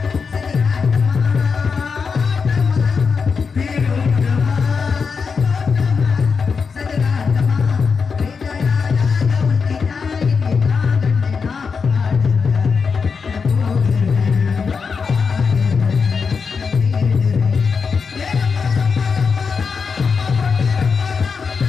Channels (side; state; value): right; quieter; 5.4 dB